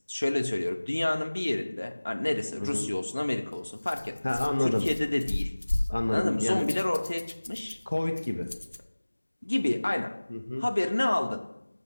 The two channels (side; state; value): both; inverted; correlation -1.00